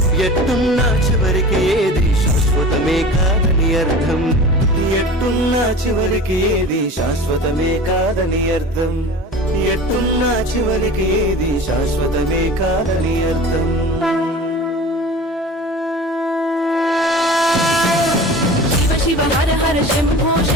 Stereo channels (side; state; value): both; normal; correlation 0.37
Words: ఎట్టున్నా చివరికి ఏది శాశ్వతమే కాదని అర్థం ఎట్టున్నా చివరికి ఏది శాశ్వతమే కాదని అర్థం ఎట్టున్నా చివరికి ఏది శాశ్వతమే కాదని అర్థం శివ శివ హర హర శంభో